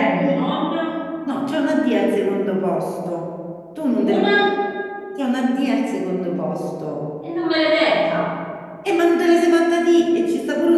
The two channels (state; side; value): identical; both; correlation 1.00